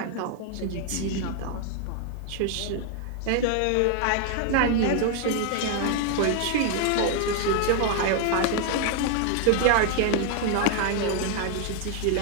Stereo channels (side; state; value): both; different; correlation 0.01